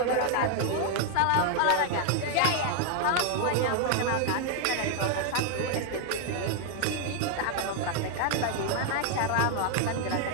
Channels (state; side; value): different; both; correlation 0.00